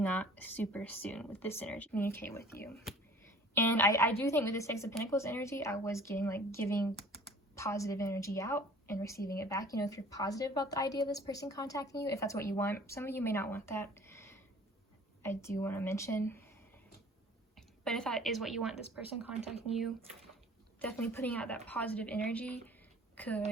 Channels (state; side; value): normal; both; correlation 0.49